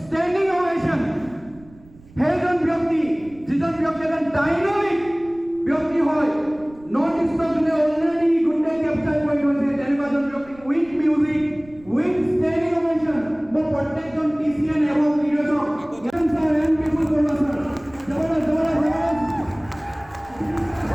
ovation. Heaven ব্যক্তি যিজন ব্যক্তি এজন dynamic ব্যক্তি হয় নর্থ ইষ্টনে অলরেডি গুডে ক্যাপচার কৰি থৈছে তেনেকুৱাজন ব্যক্তি উইথ মিউজিক উইথ ষ্টেডিং ওভেশ্যন মই প্ৰত্যেকজন টিচিএন এবং লিডাৰক জ্ঞান স্যাৰ এণ্ড পিপল কৰিব স্যাৰ জবৰদস্ত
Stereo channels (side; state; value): right; noise; rumble, 24 dB below the sound